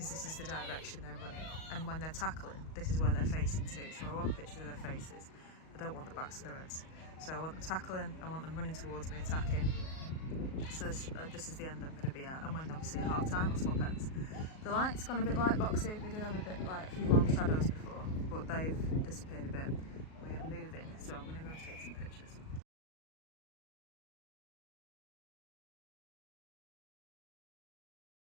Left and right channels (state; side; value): late; right; 38 ms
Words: this is the direction they're running. And when they're tackling, this is where they're facing to. So I want pictures of their faces. I don't want the backs of their heads. So I want them tackling, I want them running towards me, attacking. So this is the end I'm going to be at. And when obviously at half time, I'll swap ends. The light's gone a bit light boxy. We did have a bit like a few long shadows before, but they've disappeared a bit. We are moving, so I'm going to go and take some pictures.